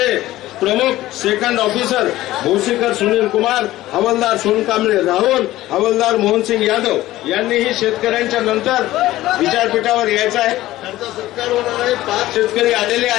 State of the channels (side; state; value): right; quieter; 15.9 dB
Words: प्रमुख सेकंड ऑफिसर भोसीकर सुनील कुमार, हवालदार सोनकांबळे राहुल, हवालदार मोहनसिंग यादव यांनीही शेतकऱ्यांच्या नंतर विचारपीठावर यायचं आहे। त्यांचा सत्कार होणार आहे। 5 शेतकरी आलेले